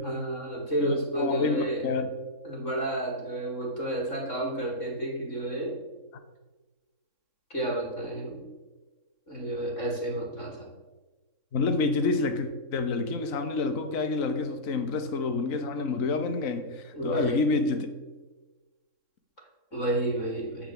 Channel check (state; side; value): late; right; 3.6 ms